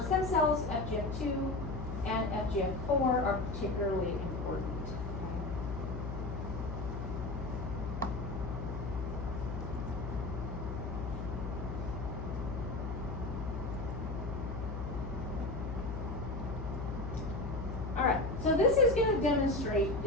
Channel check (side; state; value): left; noise; hum, 5 dB below the sound